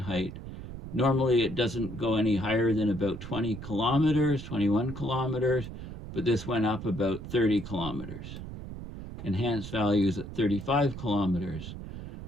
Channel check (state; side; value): noise; right; rumble, 10 dB below the sound